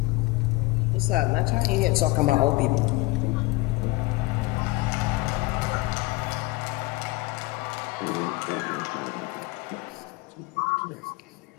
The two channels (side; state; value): right; quieter; 21.0 dB